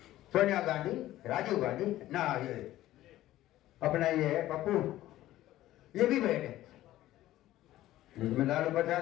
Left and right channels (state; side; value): quieter; right; 14.8 dB